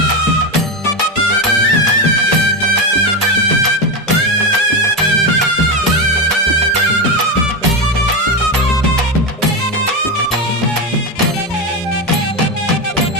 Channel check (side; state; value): both; normal; correlation 0.14